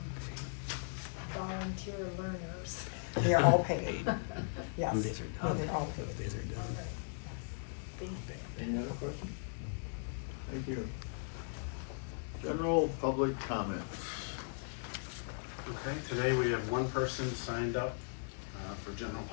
volunteer learners? They are all paid. Yes. Okay. They're all paid. All right. Thank you. Any other questions? Thank you. General public comment. Okay, today we have one person signed up for general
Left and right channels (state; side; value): silent; right; digital silence